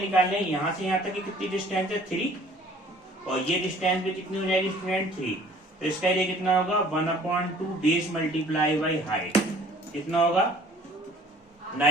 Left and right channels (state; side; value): normal; both; correlation 0.53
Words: यहाँ से यहाँ तक की कितनी डिस्टेंस है 3 और ये डिस्टेंस भी कितनी हो जाएगी स्टूडेंट 3, तो इसका एरिया कितना होगा 1/2 बेस मल्टीप्लाई बाई हाइट, कितना होगा